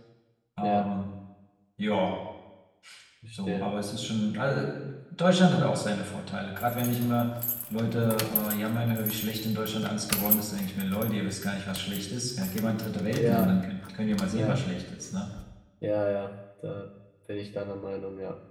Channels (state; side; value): identical; both; correlation 1.00